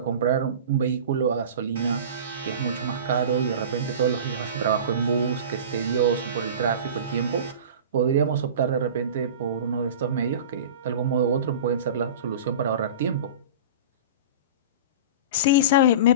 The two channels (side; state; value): both; inverted; correlation -0.34